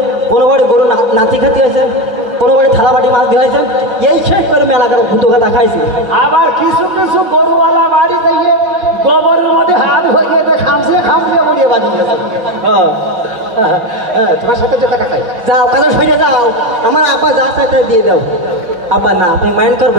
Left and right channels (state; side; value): late; left; 5.5 ms